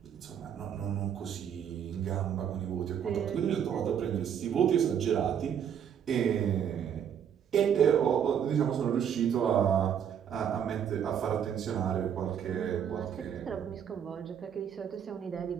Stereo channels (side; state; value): left; quieter; 8.6 dB